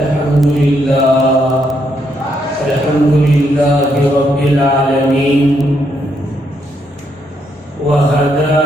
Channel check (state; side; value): normal; both; correlation 0.76